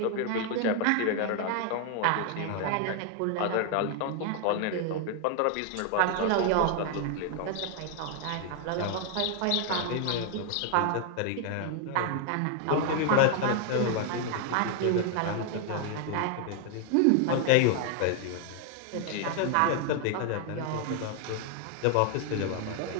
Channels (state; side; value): different; both; correlation 0.00